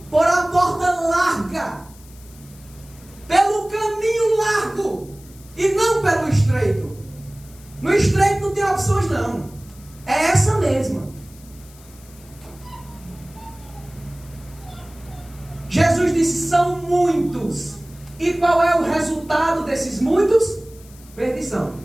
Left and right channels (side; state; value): left; noise; hiss, 24 dB below the sound